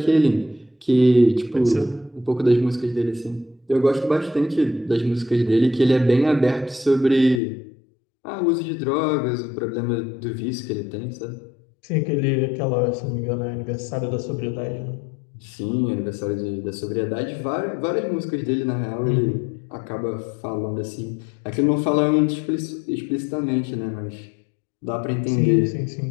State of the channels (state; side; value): drops out; right; at 7.4 s